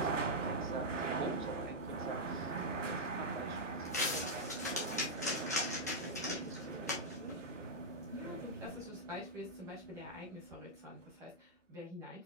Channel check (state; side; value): normal; both; correlation -0.05